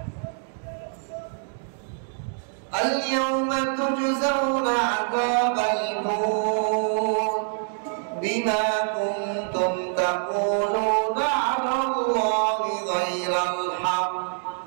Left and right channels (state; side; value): silent; left; digital silence